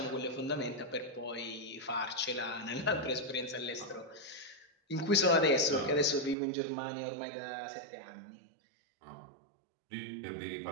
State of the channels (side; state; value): left; drops out; at 6.4 s